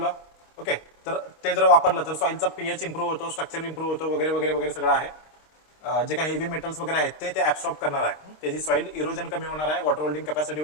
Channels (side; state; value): right; late; 26 ms